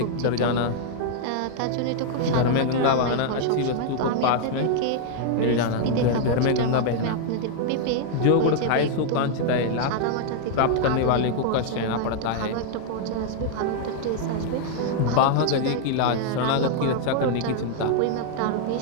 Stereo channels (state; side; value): different; both; correlation 0.00